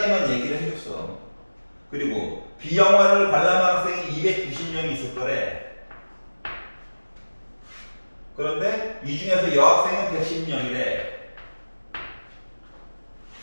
얘기를 해줬어. 그리고 B 영화를 관람한 학생이 290명이 있을 거래. 그런데 이 중에서 여학생은 110명이래.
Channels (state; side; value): inverted; both; correlation -1.00